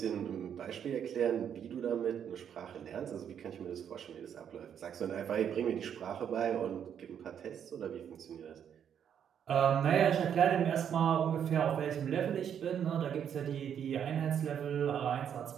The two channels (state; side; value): quieter; left; 8.6 dB